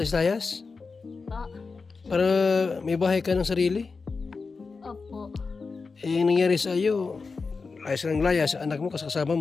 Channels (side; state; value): right; quieter; 4.5 dB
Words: Po. Para may bahay ka ng sarili. Opo. Eh, yung nangyari sa iyo, layas ng layas, anak mo kasama